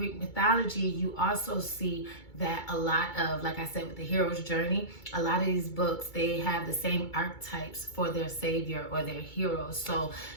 mythology, you also see that a lot of, like I said, with the hero's journey, a lot of these books, they have the same archetypes for their savior or their hero. So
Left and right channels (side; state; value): right; late; 2.2 ms